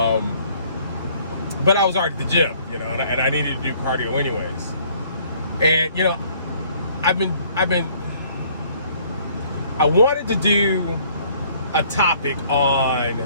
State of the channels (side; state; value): both; inverted; correlation -0.59